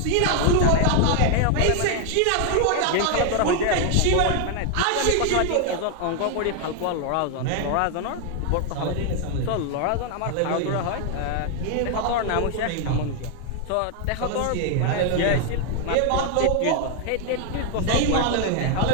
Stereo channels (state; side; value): different; both; correlation 0.00